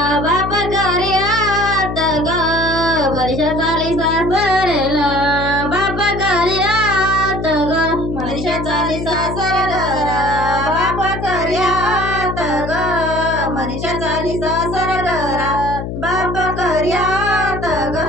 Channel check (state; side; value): noise; left; hum, 6 dB below the sound